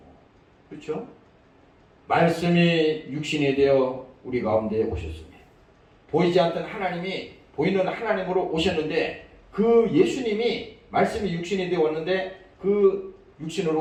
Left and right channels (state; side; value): identical; both; correlation 1.00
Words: 그렇죠? 말씀이 육신이 되어 우리 가운데 오셨습니다. 보이지 않던 하나님이 보이는 하나님으로 오셨는데 그 예수님이 말씀이 육신이 되어 왔는데 그